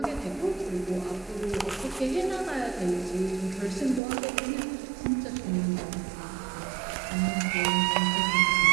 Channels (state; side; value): drops out; left; at 4.0 s